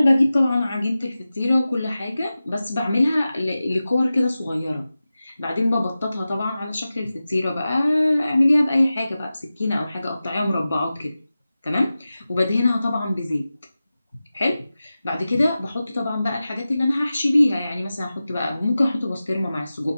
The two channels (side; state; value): both; inverted; correlation -0.95